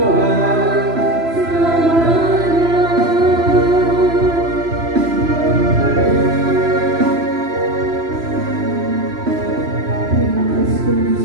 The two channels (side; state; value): left; late; 3.0 ms